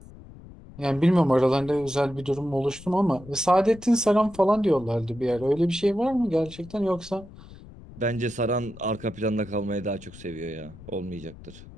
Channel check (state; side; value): noise; left; rumble, 18 dB below the sound